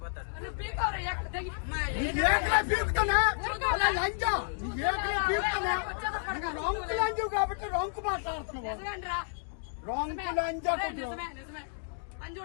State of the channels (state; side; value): silent; right; digital silence